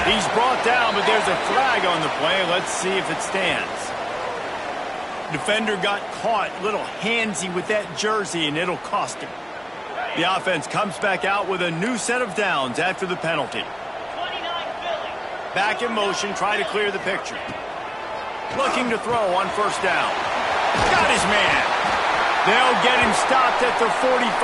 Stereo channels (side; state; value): both; identical; correlation 1.00